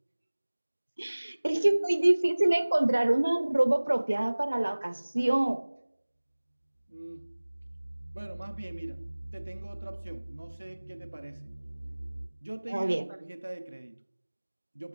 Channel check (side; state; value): both; inverted; correlation -1.00